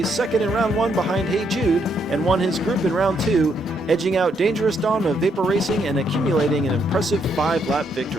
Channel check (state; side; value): normal; both; correlation 0.74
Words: second in round 1 behind Hey Jude and won his group in round 2, edging out Dangerous Dawn of Vapor Racing and accumulating an impressive 5-lap